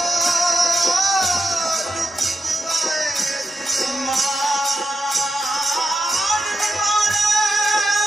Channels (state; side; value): normal; both; correlation 0.87